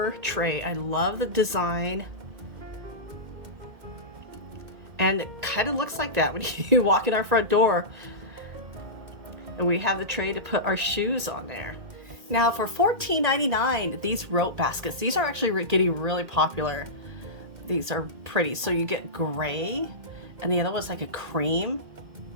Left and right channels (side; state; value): left; late; 2.1 ms